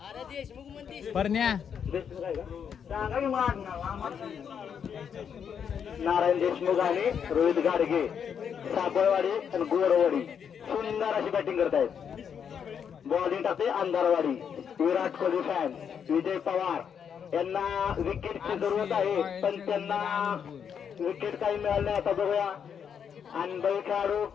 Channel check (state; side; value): quieter; right; 7.6 dB